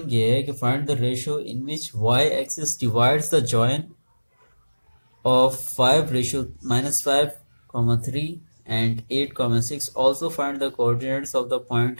ये है कि find the ratio in which Y axis divides the join of 5 ratio -5, 3 and 8, 6। Also find the coordinates of the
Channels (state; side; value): inverted; both; correlation -1.00